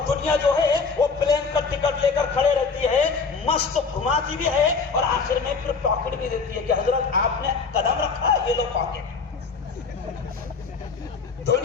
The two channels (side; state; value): right; quieter; 4.9 dB